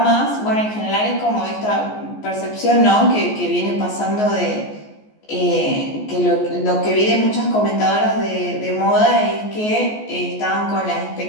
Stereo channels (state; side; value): late; right; 14 ms